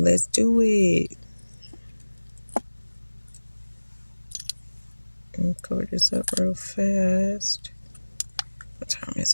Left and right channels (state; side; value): inverted; both; correlation -1.00